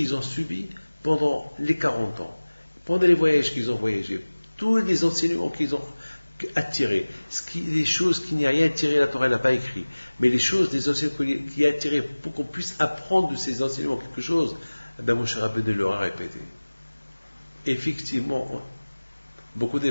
ont subi pendant les 40 ans, pendant les voyages qu'ils ont voyagés, tous les enseignements qu'ils ont attirés, les choses qui n'y a rien attiré, la Torah n'a pas écrit, mais les choses, des enseignements qui a attiré pour qu'on puisse apprendre de ces enseignements quelque chose, Moshe Rabbeinu leur a répété. Effectivement, beaucoup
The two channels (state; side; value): inverted; both; correlation -1.00